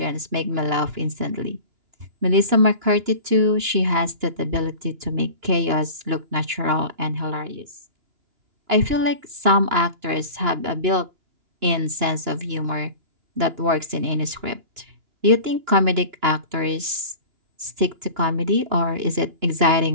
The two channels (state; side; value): late; left; 2.9 ms